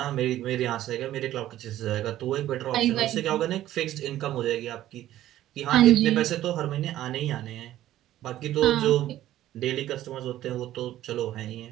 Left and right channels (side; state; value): left; quieter; 13.5 dB